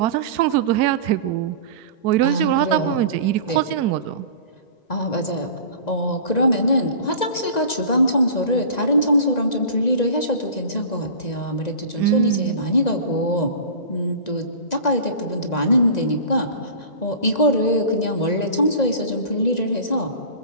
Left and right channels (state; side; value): late; right; 1.9 ms